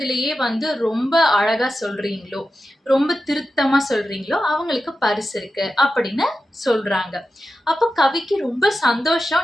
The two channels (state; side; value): normal; both; correlation 0.92